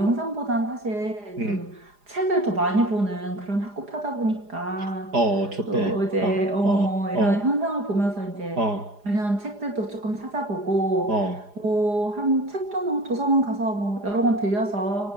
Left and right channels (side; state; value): left; late; 4.9 ms